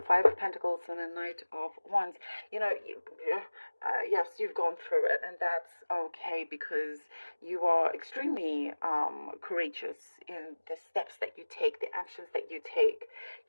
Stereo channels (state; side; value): inverted; both; correlation -1.00